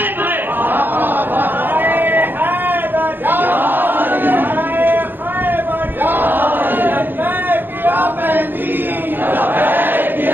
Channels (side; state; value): left; late; 0.094 ms